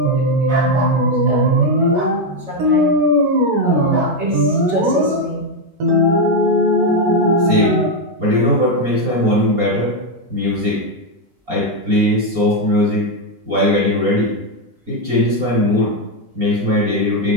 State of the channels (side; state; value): left; late; 4.3 ms